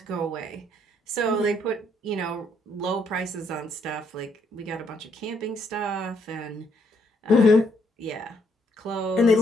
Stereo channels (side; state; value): both; normal; correlation 0.71